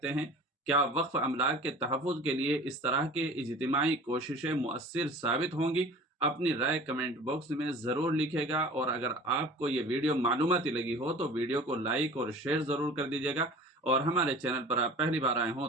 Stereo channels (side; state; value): both; normal; correlation 0.42